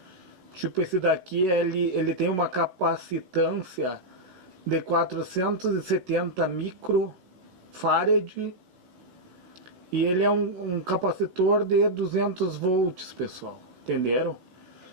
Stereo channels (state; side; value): late; left; 16 ms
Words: Tipo, esse daqui, ele tem uma capacitância de 470 microfarad e ele é um capacitor de 200 volts, pessoal. Entenderam?